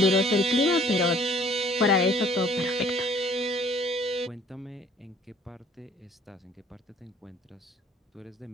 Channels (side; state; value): both; normal; correlation 0.56